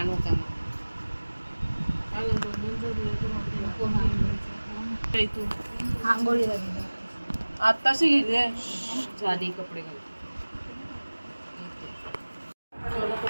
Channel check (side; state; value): both; inverted; correlation -1.00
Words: का आंघोळी आत्ताशी गेले झाली कपडे घाल